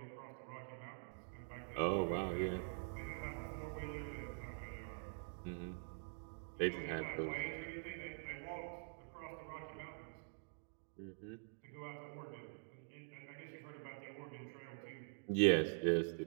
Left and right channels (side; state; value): left; silent; digital silence